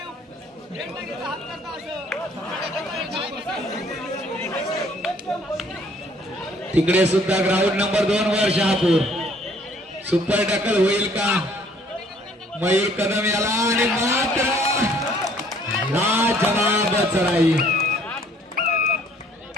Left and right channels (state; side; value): normal; both; correlation 0.60